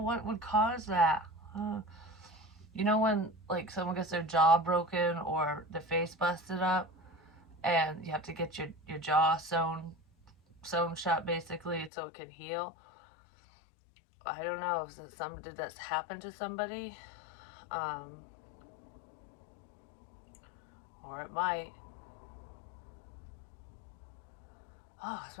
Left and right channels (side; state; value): right; drops out; at 11.9 s